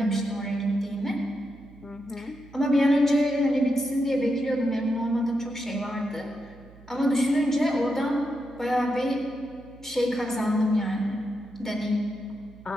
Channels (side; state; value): right; noise; hum, 22 dB below the sound